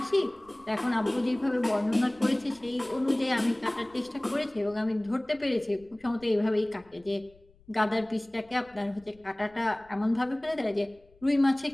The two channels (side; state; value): left; noise; rumble, 29 dB below the sound